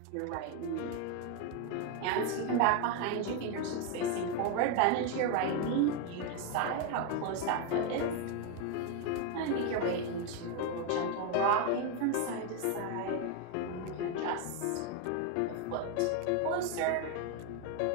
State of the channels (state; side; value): different; both; correlation 0.02